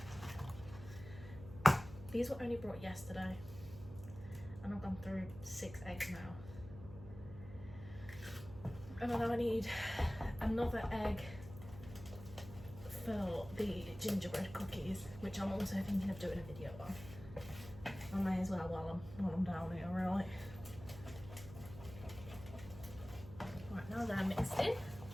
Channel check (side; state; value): right; noise; hum, 14 dB below the sound